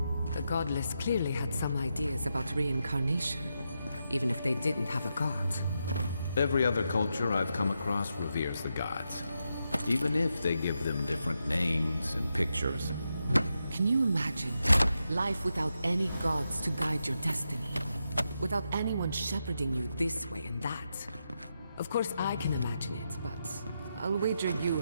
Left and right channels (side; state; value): both; inverted; correlation -0.86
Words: The godless clearly had some ideas about reincarnation, even if they didn't have a god. Every other culture I've come across reveres the gods, even if they give them different names and pictures. Can you imagine life without any gods to guide your destiny? Without anyone shepherding you this way and that? Of course I can imagine it, but I'll wager you